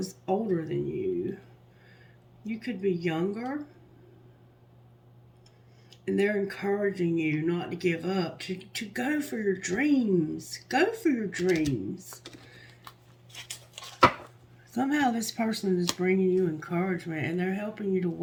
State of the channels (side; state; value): both; identical; correlation 1.00